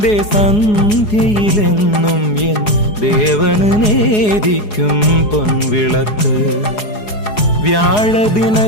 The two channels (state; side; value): late; right; 4.8 ms